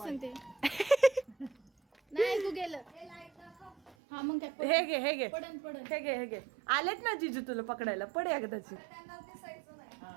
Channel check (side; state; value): left; drops out; at 4.0 s